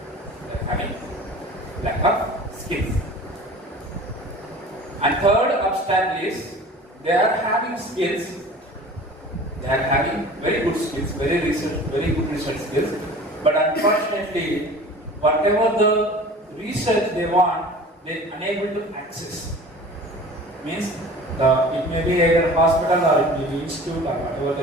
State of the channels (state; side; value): normal; both; correlation 0.42